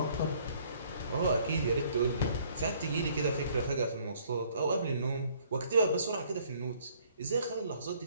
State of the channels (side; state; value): both; inverted; correlation -0.61